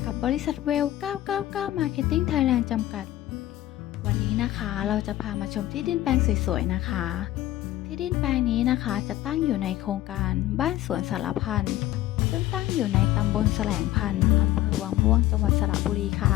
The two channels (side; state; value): right; quieter; 14.8 dB